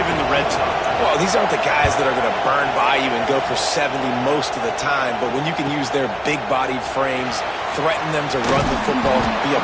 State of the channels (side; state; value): both; identical; correlation 1.00